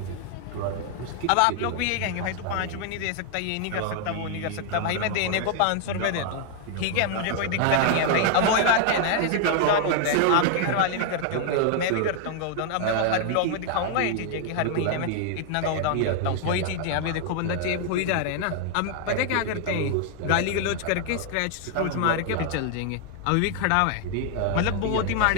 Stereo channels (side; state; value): both; different; correlation 0.00